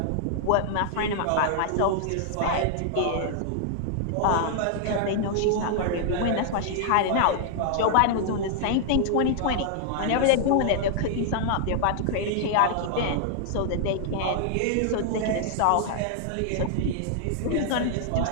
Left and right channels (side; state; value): both; different; correlation -0.01